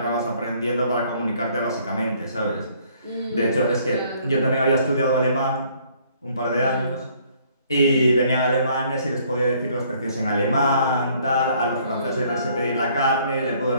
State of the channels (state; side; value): inverted; both; correlation -0.62